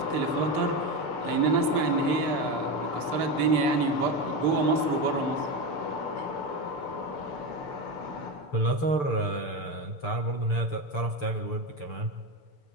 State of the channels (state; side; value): late; right; 6.8 ms